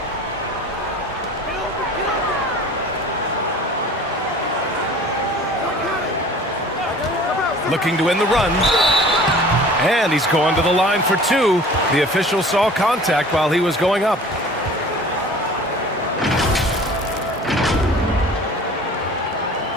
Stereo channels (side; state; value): both; normal; correlation 0.45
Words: Looking to win the run. And he's going to the line for 2. The official saw contact while he was going up.